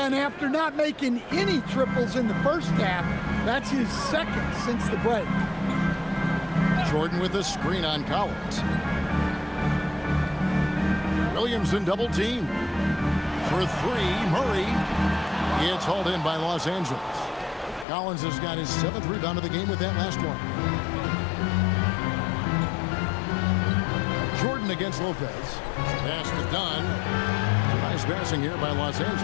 and after not making any triples in the first half, that's his second since the break. Jordan with a screen on Collins. Williamson double team. For three, Murray. It's hauled in by Los Angeles. Collins has got his 7th rebound of the game with that last one. Jordan against Lopez. Pass is done. Nice passing here by Los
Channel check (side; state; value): right; drops out; at 17.9 s